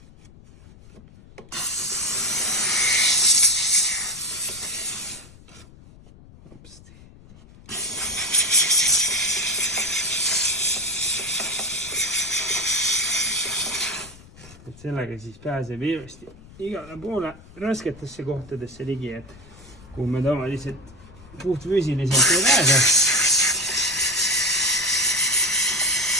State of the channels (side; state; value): left; noise; rumble, 22 dB below the sound